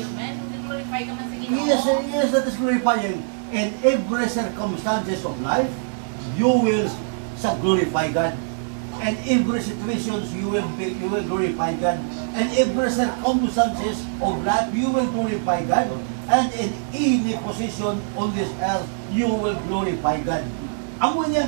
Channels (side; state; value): left; silent; 63 dB below the other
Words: glorify ka man sa Ginoo. Yes, that is glorifying. In every circumstances of life, you will glorify God. And every situations you will glorify God. And every circumstances of life you will glorify God. And in any position on this earth you will glorify God. Amo niyang